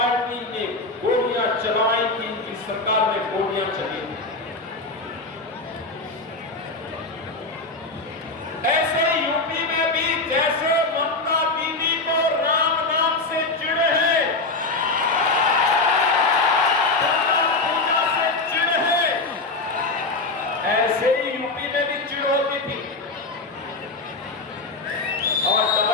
ने गोलियां चलाई थी, इनकी सरकार ने गोलियां चली थी। ऐसे यूपी में भी जैसे ममता दीदी को राम नाम से चिढ़ है, पूजा से चिढ़ है, ऐसे ही यूपी में भी चिढ़ होती थी। और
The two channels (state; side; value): quieter; right; 3.4 dB